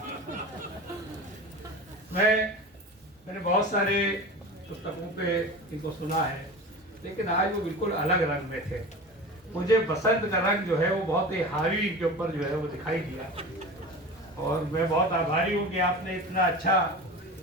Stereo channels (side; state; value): both; normal; correlation 0.32